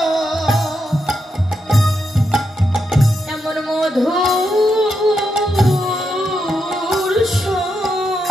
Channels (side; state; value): both; normal; correlation 0.83